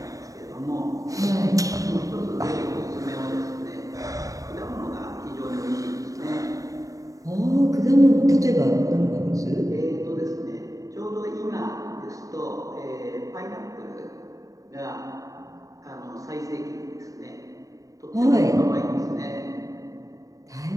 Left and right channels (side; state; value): left; late; 0.16 ms